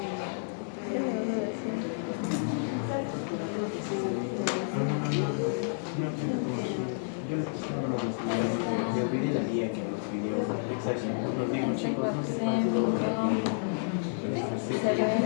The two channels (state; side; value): silent; right; 58 dB below the other